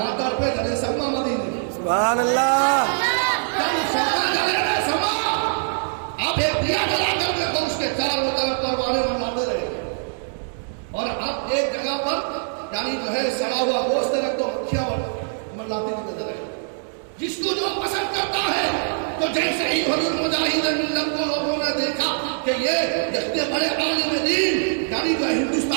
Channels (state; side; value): silent; left; digital silence